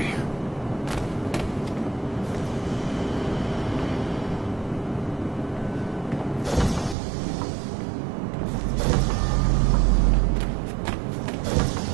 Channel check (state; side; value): drops out; left; at 7.0 s